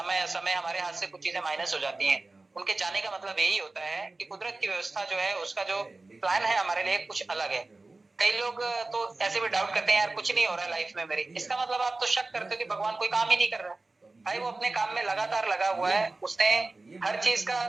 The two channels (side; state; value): left; quieter; 3.3 dB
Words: समय हमारे हाथ से कुछ चीजें माइनस हो जाती हैं। उनके जाने का मतलब यही होता है कि कुदरत की व्यवस्था जो है, उसका जो प्लान है हमारे लिए कुछ अलग है। कई लोग तो ऐसे भी डाउट करते हैं, यार कुछ नहीं हो रहा है लाइफ में मेरी। इसका मतलब आप तो शक करते हो कि भगवान कोई काम ही नहीं कर रहा है। भाई वो अपने काम में लगातार लगा हुआ है, उसने हर चीज का